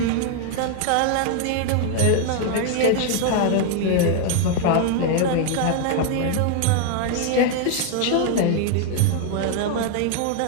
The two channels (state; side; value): different; both; correlation 0.00